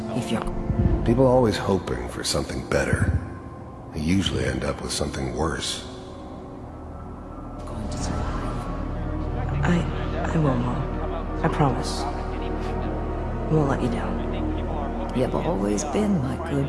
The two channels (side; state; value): both; identical; correlation 1.00